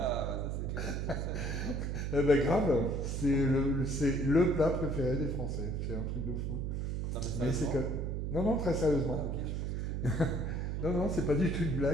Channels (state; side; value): noise; right; hum, 2 dB below the sound